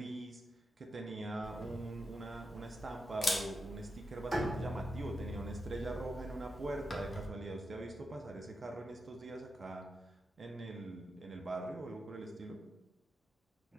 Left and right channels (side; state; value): both; normal; correlation 0.87